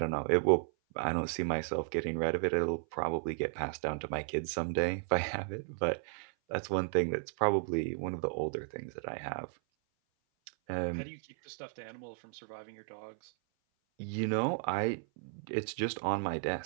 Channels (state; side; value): silent; left; 55 dB below the other